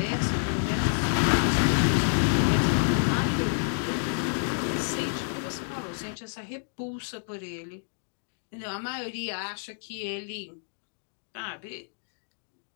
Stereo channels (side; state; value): right; silent; digital silence